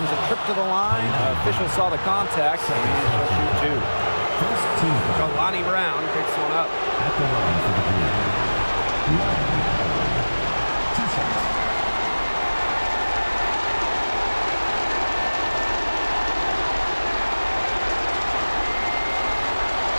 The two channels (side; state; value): both; inverted; correlation -1.00